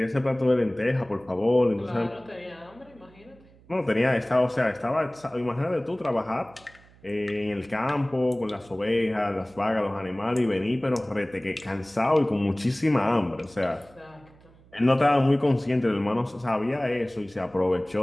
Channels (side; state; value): right; noise; hum, 26 dB below the sound